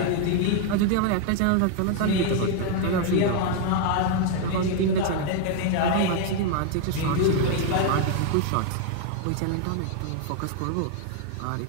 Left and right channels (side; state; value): both; different; correlation 0.00